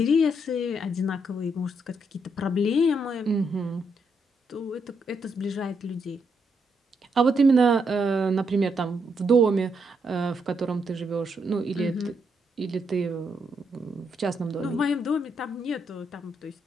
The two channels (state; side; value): normal; both; correlation 0.78